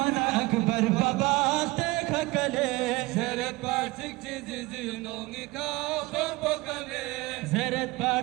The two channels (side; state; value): left; quieter; 21.6 dB